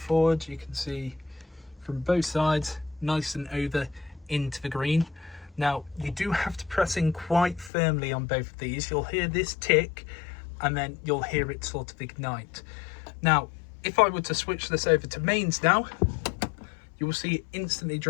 you can see from both sides, nice and over into the green. Now you do have to press in quite firmly on both of these. You'll hear this tick and then you'll hear it sort of ignite. Now if I were to switch this over to mains now, you will see it instantly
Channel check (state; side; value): drops out; right; at 7.7 s